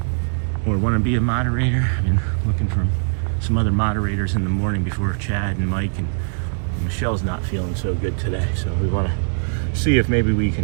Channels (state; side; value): silent; left; 63 dB below the other